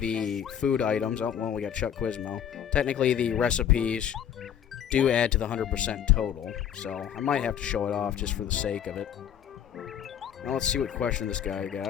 food items, oh, well, we got Chuck Quizmo. Technically the recipes do add to the 100% total, so I might have to show it off just for the sake of it. Now let's see what question this guy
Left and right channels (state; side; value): quieter; right; 9.4 dB